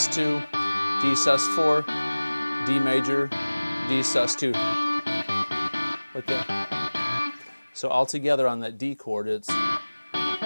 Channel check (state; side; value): inverted; both; correlation -1.00